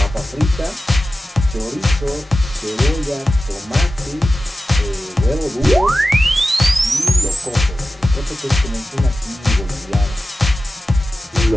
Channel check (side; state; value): both; normal; correlation 0.94